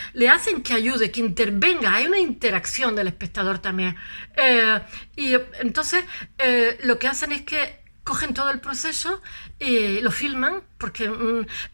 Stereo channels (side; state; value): both; inverted; correlation -1.00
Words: le hacen que ayude, que intervenga, hay una interacción del espectador también. Y entonces lo que hacen es que cogen todo el proceso y lo filman, porque